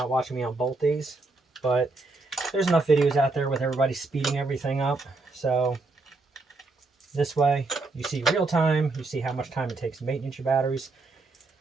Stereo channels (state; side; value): quieter; left; 3.5 dB